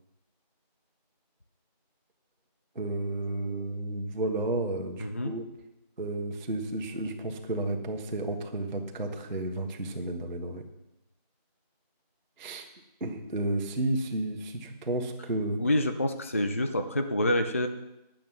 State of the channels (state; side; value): inverted; both; correlation -0.60